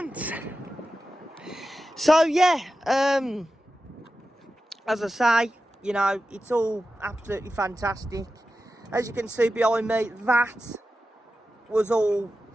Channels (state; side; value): normal; both; correlation 0.92